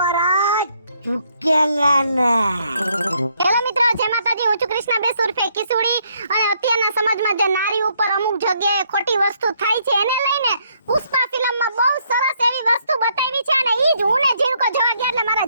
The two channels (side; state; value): both; inverted; correlation -0.71